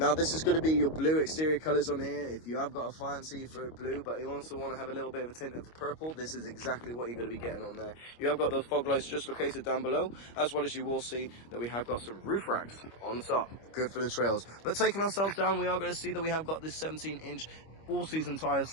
this is going to be your blue exterior colours on here. If you have got a fancy for blue, but you also want to have a little bit of a tint of the purple, this is exactly what you're going to be getting on there. You have got those fog lights just located down below, as well as you will see that we have got some roof racks on the top. Good for the trails. But taking ourselves down, we are going to see that we have got this 17-inch all-season tyres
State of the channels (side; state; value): right; late; 25 ms